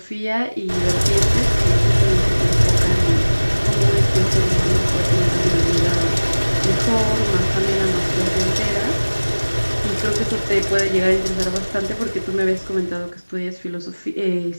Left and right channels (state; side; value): inverted; both; correlation -1.00